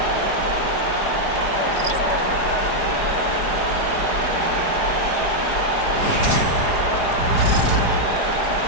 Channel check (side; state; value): right; late; 4.9 ms